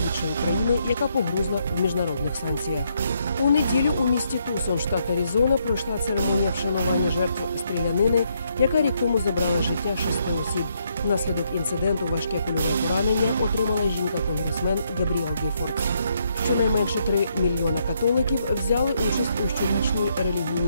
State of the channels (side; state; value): both; inverted; correlation -0.75